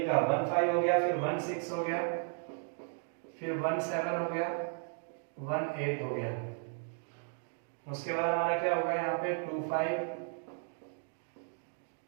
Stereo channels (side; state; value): left; silent; 55 dB below the other